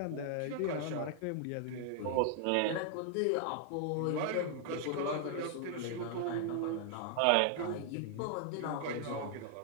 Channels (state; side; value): different; both; correlation 0.00